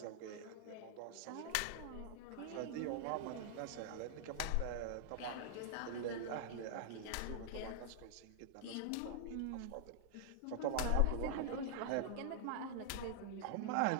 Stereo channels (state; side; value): different; both; correlation 0.00